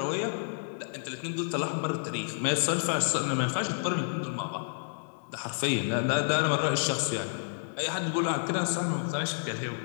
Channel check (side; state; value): right; silent; 58 dB below the other